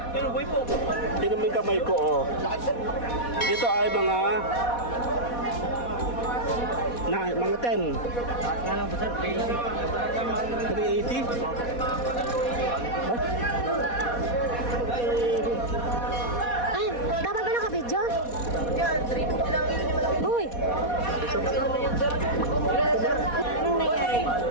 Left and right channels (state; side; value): late; right; 4.2 ms